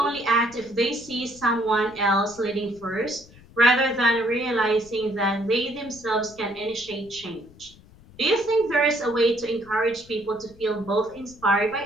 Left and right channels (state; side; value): noise; left; rumble, 24 dB below the sound